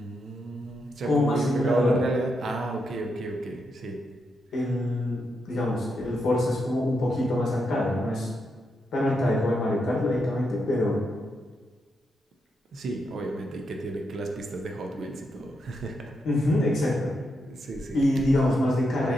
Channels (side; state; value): both; normal; correlation 0.83